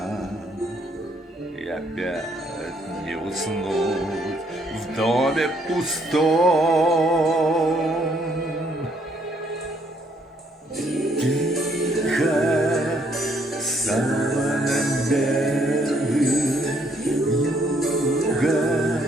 И опять не уснуть в доме пустом. Тихо, саваном белым юга,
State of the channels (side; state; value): both; normal; correlation 0.69